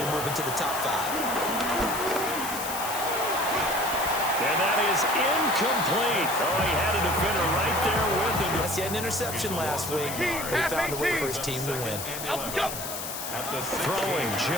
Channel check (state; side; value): noise; left; hiss, 7 dB below the sound